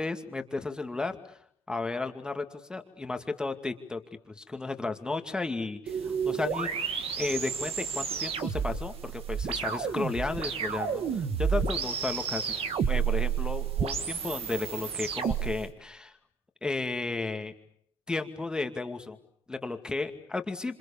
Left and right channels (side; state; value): both; normal; correlation 0.63